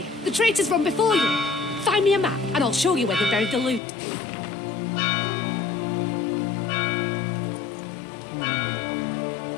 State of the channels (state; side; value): drops out; right; at 3.8 s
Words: the traitors run before you. Find me a map and I'll show you where they buried the loot.